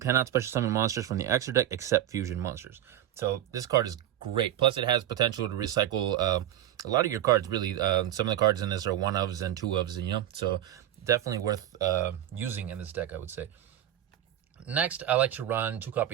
special summon monsters from the extra deck except fusion monsters. So this card is great. Plus, it has potential to recycle a lot of your cards, really. Some of the cards in this are 1-ofs and 2-ofs, you know. So definitely worth using in this deck, I would say. Next, I like to run 2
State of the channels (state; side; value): quieter; left; 11.9 dB